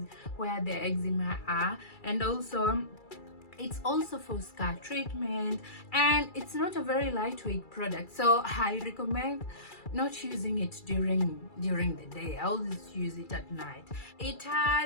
eczema are. And also it's also for scar treatment, and it's not a very lightweight product, so I recommend not using it during the day. I always use it at night. It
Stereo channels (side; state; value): right; late; 2.3 ms